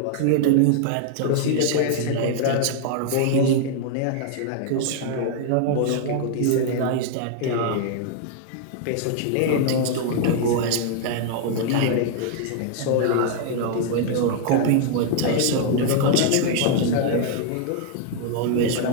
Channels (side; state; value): both; different; correlation 0.00